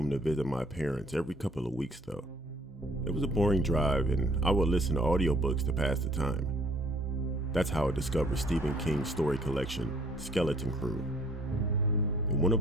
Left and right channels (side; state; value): both; normal; correlation 0.59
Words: to visit my parents every couple of weeks though. It was a boring drive, and I would listen to audiobooks to pass the time. That's how I discovered Stephen King's story collection, Skeleton Crew. In one of